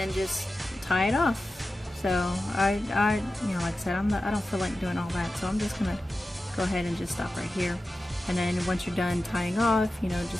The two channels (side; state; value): both; normal; correlation 0.93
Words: just tie it off. So I you know, like I said, I don't feel like doing all that, so I'm just gonna go ahead and just stop right here. And then once you're done tying off, you know,